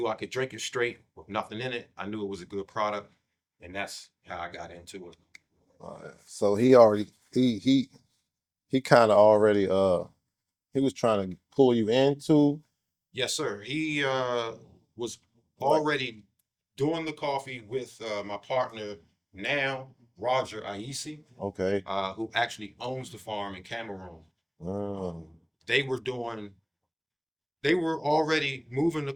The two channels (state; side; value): identical; both; correlation 1.00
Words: I could drink it straight with nothing in it, I knew it was a good product, and that's how I got into it. So he kind of already he was trying to pull you into Yes, sir. He was like already doing the coffee with my partner now, Roger Aisi, okay. who actually owns the farm in Cameroon. Um, They were doing, they were already moving the